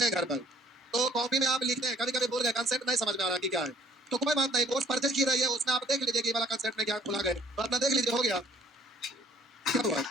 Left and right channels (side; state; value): both; normal; correlation 0.57